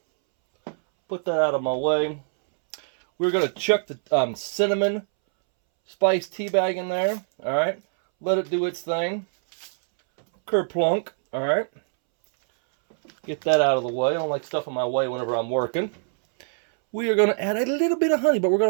Put that out of my way. We're going to chuck the cinnamon spice tea bag in there. All right. Let it do its thing. Kerplunk. All right. Get that out of the way. I don't like stuff in my way whenever I'm working. We are going to add a little bit of honey, but we're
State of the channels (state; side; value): silent; left; 63 dB below the other